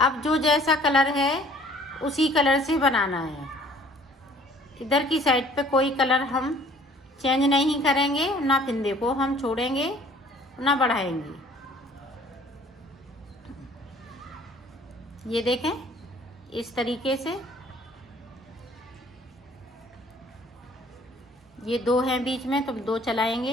जो जैसा कलर है उसी कलर से बनाना है। इधर की साइड पे कोई कलर हम चेंज नहीं करेंगे, ना फिंदे को हम छोड़ेंगे ना बढ़ाएंगे। ये देखें इस तरीके से। ये 2 हैं बीच में तो 2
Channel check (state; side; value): normal; both; correlation 0.55